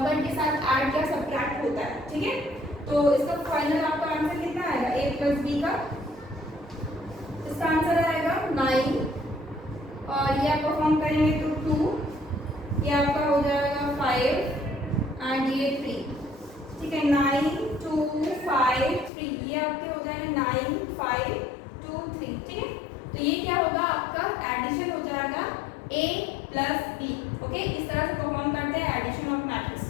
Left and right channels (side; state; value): right; drops out; at 19.1 s